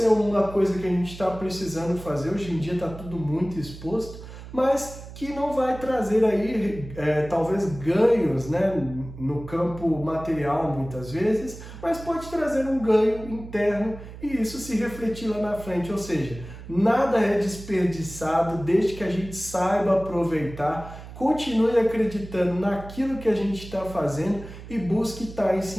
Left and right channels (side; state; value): right; noise; hum, 14 dB below the sound